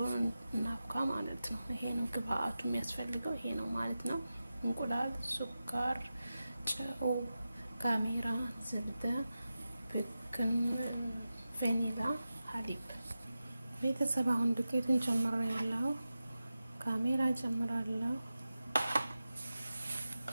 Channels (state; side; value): inverted; both; correlation -0.93